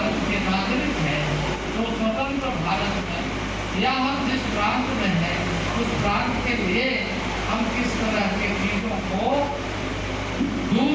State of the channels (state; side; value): identical; both; correlation 1.00